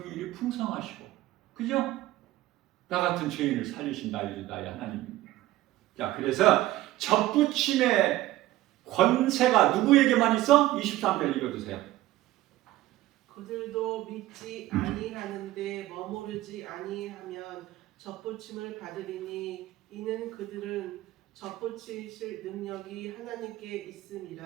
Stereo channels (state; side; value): quieter; left; 16.1 dB